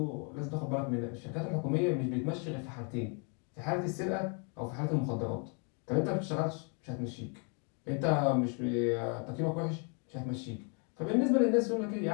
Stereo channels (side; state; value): right; quieter; 38.2 dB